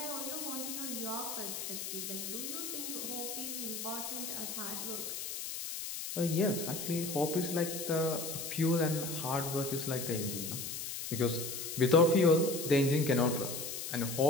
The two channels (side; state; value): left; noise; hiss, 5 dB below the sound